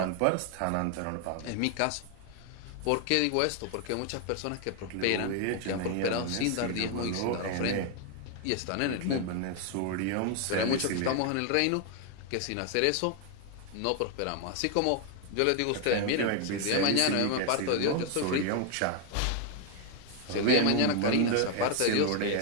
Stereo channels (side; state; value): both; different; correlation 0.00